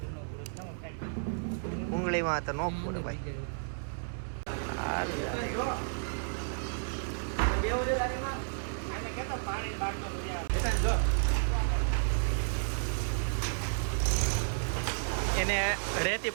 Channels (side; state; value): left; silent; digital silence